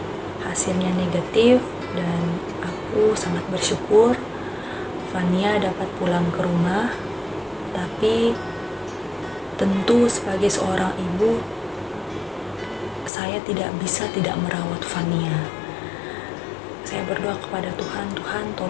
hasilnya negatif, dan aku sangat bersyukur Fania dapat pulang ke rumah. Tapi tentu sebagai seorang ibu, saya tidak bisa tidak merawat Fania. Saya berdoa kepada Tuhan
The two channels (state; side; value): drops out; right; at 13.1 s